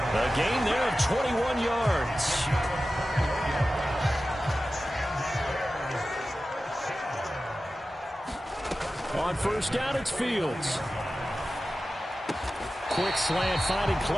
A gain there of 21 yards. On first down, it's Fields. Quick slant finding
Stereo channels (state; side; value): normal; both; correlation 0.94